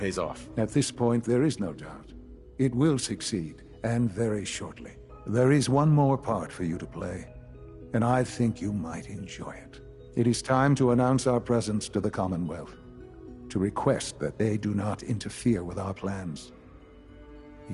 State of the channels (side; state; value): both; identical; correlation 1.00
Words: off. At this point, there is no doubt. It will succeed, and very shortly. There is one more part for you to play, and I think you might enjoy it. It is time to announce our presence to the Commonwealth, to request that they do not interfere with our plans.